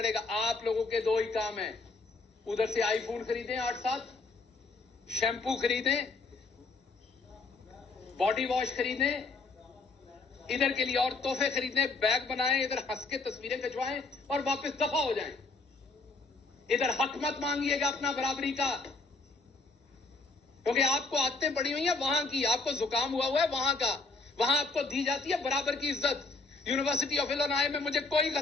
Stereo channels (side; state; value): right; quieter; 3.7 dB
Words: आप लोगों के 2 ही काम है, उधर से आईफोन खरीदें 8-7, शैम्पू खरीदें, बॉडी वॉश खरीदें, इधर के लिए और तोहफे खरीदें, बैग बनाएं, इधर हंस के तस्वीरें खिंचवाएं और वापस दफा हो जाएं। इधर हक मत मांगिएगा अपना बराबरी का, क्योंकि आपको आदतें पड़ी हुई हैं वहां की, आपको जुकाम हुआ है वहां का, वहां आपको दी जाती है बराबर की इज्जत। यूनिवर्सिटी ऑफ इलिनॉय में मुझे कोई